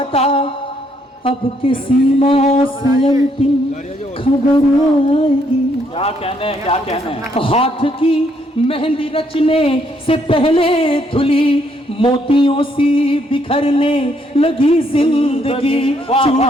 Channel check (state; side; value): normal; both; correlation 0.71